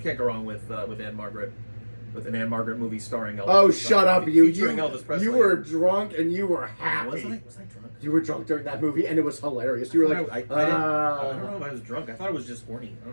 go wrong with Anne Margaret, with an Anne Margaret movie starring Elvis. Oh, shut up, you! Featuring Elvis Presley. You were drunk and you were happy. Was I drunk? You were drunk during that movie, and it was hilarious. You were like, I don't know if I was drunk. I thought I was just horny. I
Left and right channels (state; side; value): inverted; both; correlation -1.00